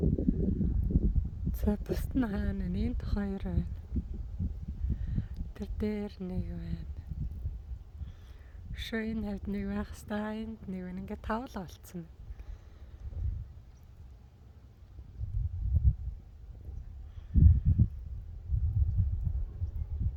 За бусд нь хаана энд 2 байна. Тэр дээр нэг байна. Шоо энэ хавьд нэг байх хэвээр энд нэг байна. Ингээ тавуулга болцсон.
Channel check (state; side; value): identical; both; correlation 1.00